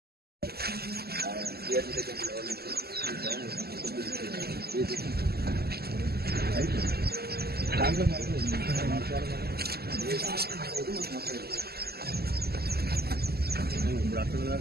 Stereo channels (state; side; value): late; left; 0.46 ms